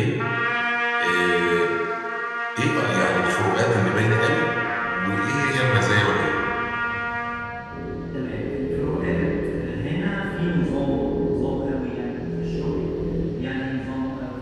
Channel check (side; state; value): both; identical; correlation 1.00